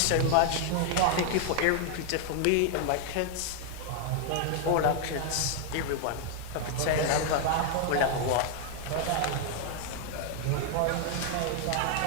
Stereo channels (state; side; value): different; both; correlation 0.00